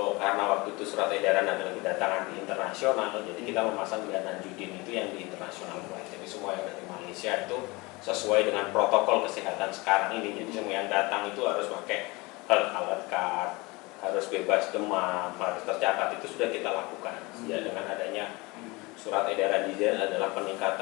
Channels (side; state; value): right; quieter; 24.3 dB